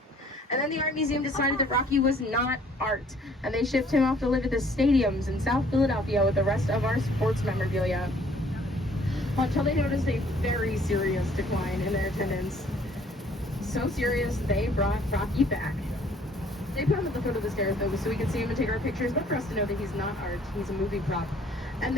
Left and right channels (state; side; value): normal; both; correlation 0.59